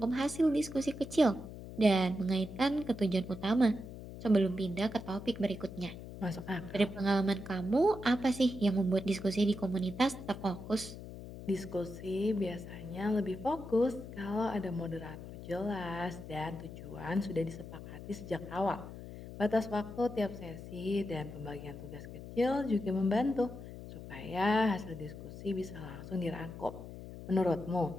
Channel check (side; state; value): left; noise; hum, 12 dB below the sound